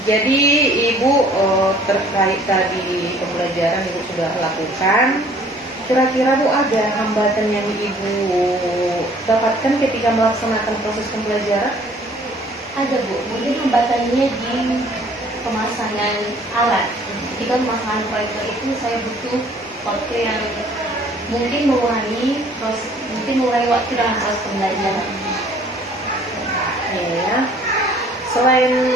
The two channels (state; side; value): normal; both; correlation 0.56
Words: Jadi Ibu terkait tadi pembelajaran Ibu sudah lakukan. Kira-kira Bu ada hambatan yang Ibu dapatkan ketika melaksanakan proses pembelajaran? Ada Bu, mungkin hambatannya di pemasangan alat. Ketika pemasangan proyektor itu saya butuh waktu yang mungkin mengurangi waktu dalam proses pembelajaran. Ya. Selain